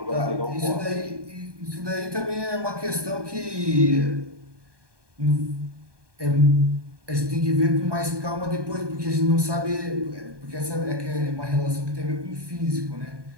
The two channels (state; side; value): late; left; 1.2 ms